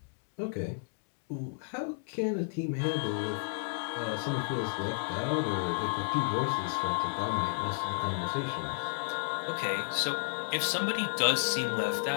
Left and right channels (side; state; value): right; silent; digital silence